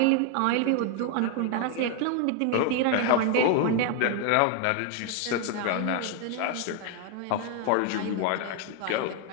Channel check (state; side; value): different; both; correlation 0.00